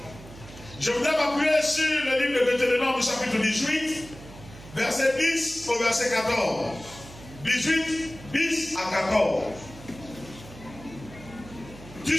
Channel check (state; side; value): noise; right; hum, 17 dB below the sound